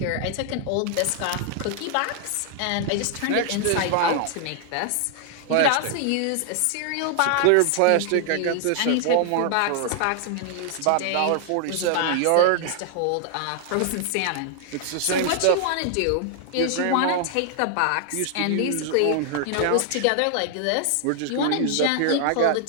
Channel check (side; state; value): both; different; correlation 0.00